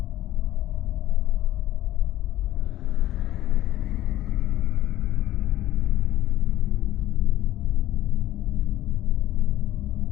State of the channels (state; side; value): quieter; right; 14.0 dB